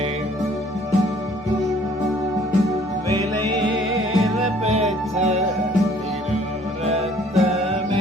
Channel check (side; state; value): both; normal; correlation 0.57